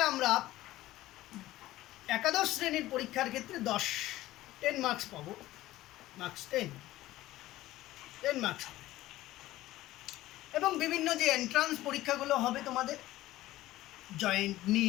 আমরা একাদশ শ্রেণীর পরীক্ষার ক্ষেত্রে 10 মার্কস পাবো। 10 মার্কস হবে। এবং বিভিন্ন যে এন্ট্রান্স পরীক্ষাগুলো হবে তোমাদের, জয়েন্ট,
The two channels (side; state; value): right; quieter; 16.1 dB